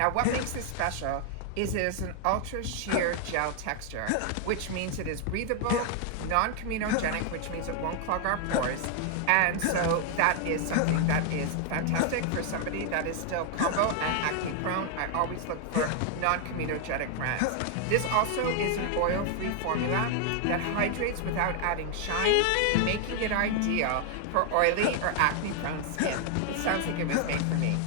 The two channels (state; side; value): different; both; correlation 0.00